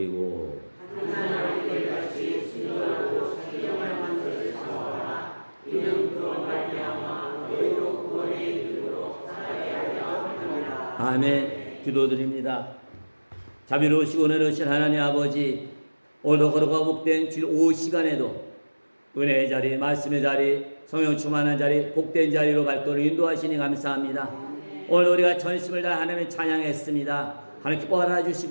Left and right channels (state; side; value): inverted; both; correlation -1.00